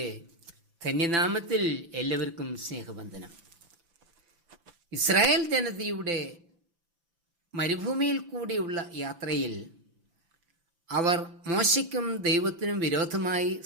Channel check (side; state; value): left; late; 5.9 ms